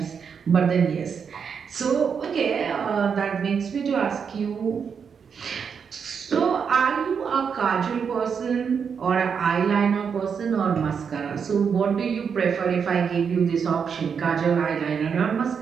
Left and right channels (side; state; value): left; quieter; 6.6 dB